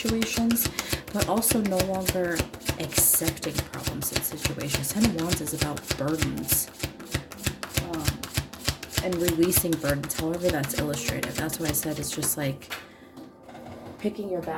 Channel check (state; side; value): identical; both; correlation 1.00